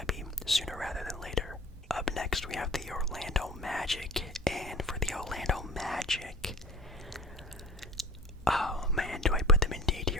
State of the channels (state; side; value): normal; both; correlation 0.39